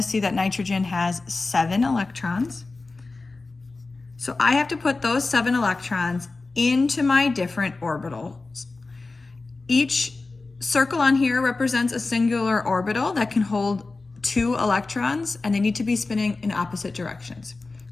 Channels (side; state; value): right; quieter; 3.6 dB